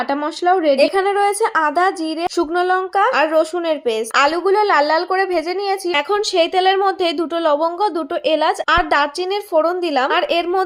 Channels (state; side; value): identical; both; correlation 1.00